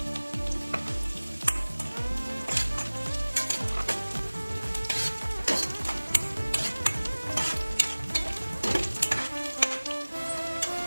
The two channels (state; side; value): inverted; both; correlation -1.00